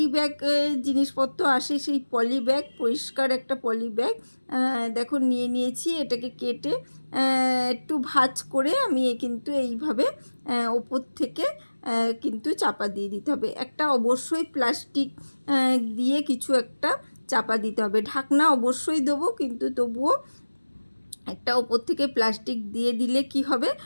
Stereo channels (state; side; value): inverted; both; correlation -1.00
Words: ব্যাগ জিনিসপত্র আসে, সেই পলি ব্যাগ, পরিষ্কার একটা পলি ব্যাগ দেখো নিয়ে নিয়েছি। এটাকে কেটে একটু ভাঁজ করে আমি কিন্তু এইভাবে ওপর থেকে কিন্তু চাপা দিয়ে দিতে হবে। একটা অবশ্যই প্লাস্টিক দিয়ে কিছু একটা চাপা দিতে হবে। ঢাকনা অবশ্যই দেবো, কিন্তু তবুও একটা ওপর থেকে প্লাস্টিক দিয়ে দিলে কি হবে,